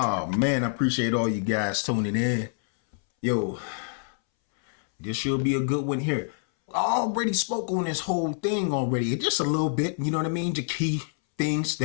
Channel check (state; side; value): silent; right; 61 dB below the other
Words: man, I appreciate all you guys tuning in. Yo, this should be a good one here. I already spoke on this whole thing already, just a little bit, you know what I mean? The key things